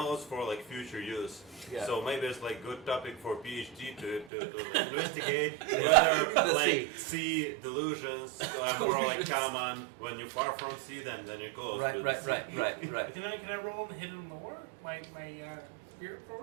for like future use. Yeah. So maybe it's like good topic for PhD to like, investigate whether The like sea delusions are more like common when you're far from sea than you're close to right, the sea. right. Can I roll on hidden lore? My spirit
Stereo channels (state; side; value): drops out; left; at 4.3 s